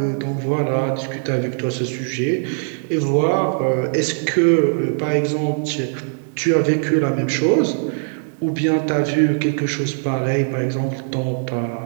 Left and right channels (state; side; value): silent; left; digital silence